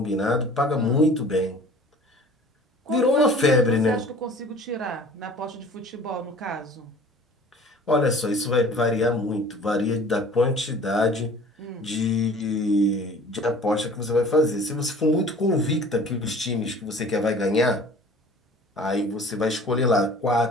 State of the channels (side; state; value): both; normal; correlation 0.47